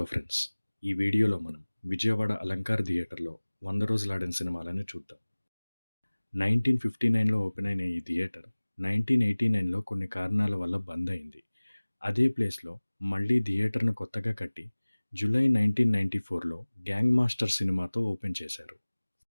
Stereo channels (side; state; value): both; inverted; correlation -1.00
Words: friends! ఈ వీడియోలో మనం విజయవాడ అలంకార్ థియేటర్‌లో 100 రోజులాడిన సినిమాలను చూద్దాం. 1959లో ఓపెన్ అయిన ఈ థియేటర్ 1989లో కొన్ని కారణాల వల్ల బంద్ అయింది. అదే ప్లేస్‌లో మళ్ళీ థియేటర్‌ను కొత్తగా కట్టి జూలై 1994లో 'గ్యాంగ్ మాస్టర్' సినిమాతో ఓపెన్ చేశారు.